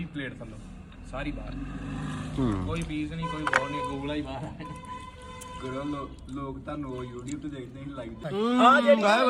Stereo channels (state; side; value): identical; both; correlation 1.00